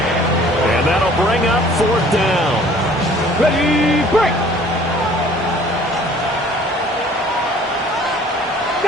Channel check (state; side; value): normal; both; correlation 0.53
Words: And that'll bring up 4th down. Ready, break.